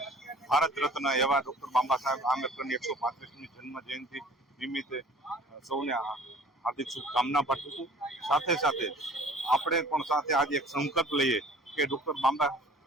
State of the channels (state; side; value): normal; both; correlation 0.48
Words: ભારત રત્ન એવા ડોક્ટર બાબા સાહેબ આંબેડકરની 135મી જન્મ જયંતિ નિમિત્તે સૌને હાર્દિક શુભકામના પાઠવું છું. સાથે સાથે આપણે પણ સાથે આજે એક સંકલ્પ લઈએ કે ડોક્ટર બાબા